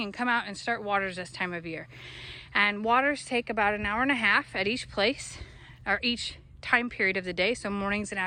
and come out and start waters this time of year. And waters take about an hour and a half at each place, or each time period of the day, so mornings and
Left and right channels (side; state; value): both; identical; correlation 1.00